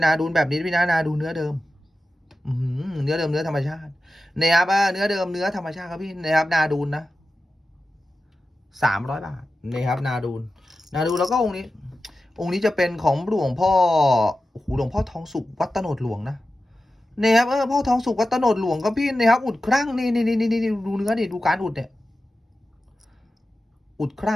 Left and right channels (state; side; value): normal; both; correlation 0.93